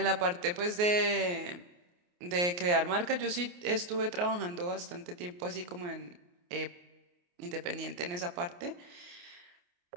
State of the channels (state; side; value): late; left; 28 ms